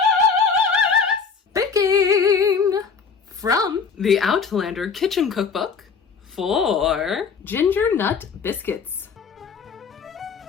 Baking from the Outlander Kitchen cookbook for Ginger-Nut Biscuits.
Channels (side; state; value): right; quieter; 5.6 dB